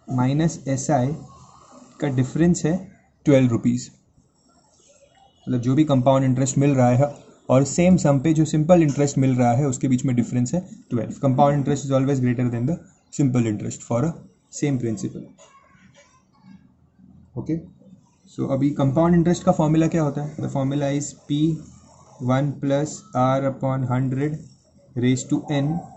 minus SI का difference है 12 rupees. मतलब जो भी compound interest मिल रहा है और same सम पे जो सिंपल इंटरेस्ट मिल रहा है उसके बीच में डिफरेंस है 12. Compound interest is always greater than the simple interest for a same principal. Okay, so अभी कंपाउंड इंटरेस्ट का फॉर्मूला क्या होता है, the formula is P one plus R upon 100 raise to N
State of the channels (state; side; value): identical; both; correlation 1.00